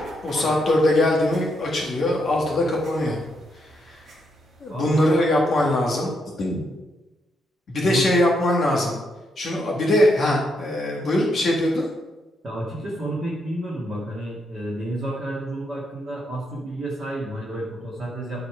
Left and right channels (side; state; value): both; normal; correlation 0.79